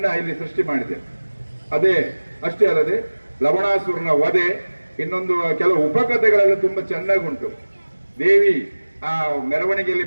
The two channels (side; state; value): both; inverted; correlation -1.00